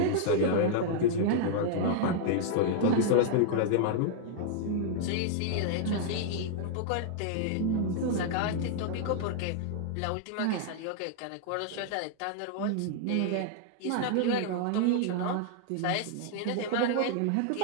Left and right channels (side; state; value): both; different; correlation -0.01